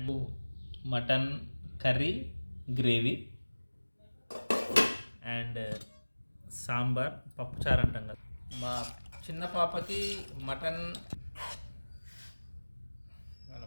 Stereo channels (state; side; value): inverted; both; correlation -1.00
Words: mutton curry gravy and sambar పప్పుచారు అంటాం కదా. మా చిన్న పాపకి మటన్